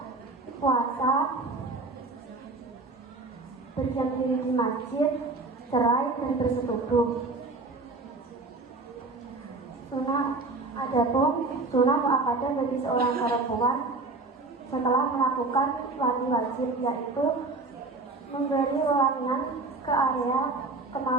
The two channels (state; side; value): quieter; left; 3.4 dB